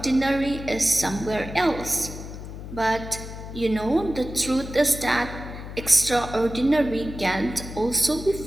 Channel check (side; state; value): left; noise; hum, 11 dB below the sound